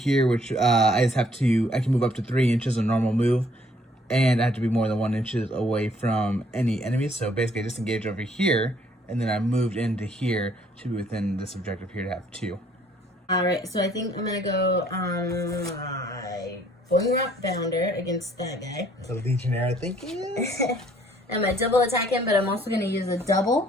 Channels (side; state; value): both; normal; correlation 0.62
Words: which I can move up to 3 inches, a normal move. And I have to be more than 1 inch away from any enemies. So basically I disengaged over here, and then I moved into here to be within this objective here to have 2. Alright, so I think I'm going to go on my Boingrot Bounder against that guy. The Legionary, I think it is. I'm going to double attack him, but I'm also going to use a